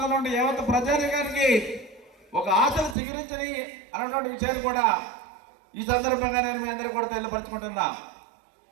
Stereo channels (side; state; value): left; drops out; at 3.0 s